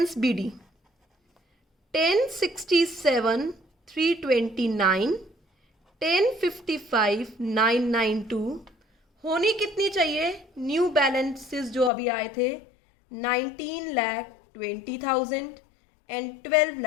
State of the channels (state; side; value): drops out; right; at 11.9 s